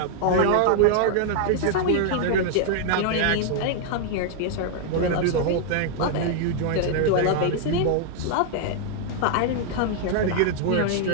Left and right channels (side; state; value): both; different; correlation 0.00